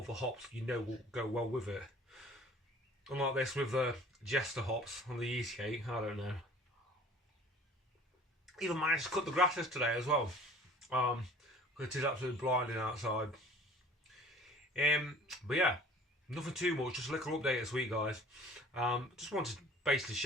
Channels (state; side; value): normal; both; correlation 0.49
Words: other hops you know will go well with it. Unlike this with the Jester hops on the yeast cake, I don't know. Even managed to cut the grasses today as well. Because it is absolutely blinding outside. But yeah, nothing too much, just a little update this week, guys. Just wanted to basically